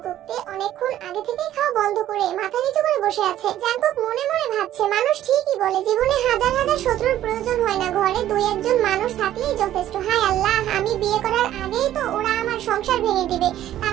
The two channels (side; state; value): left; quieter; 12.6 dB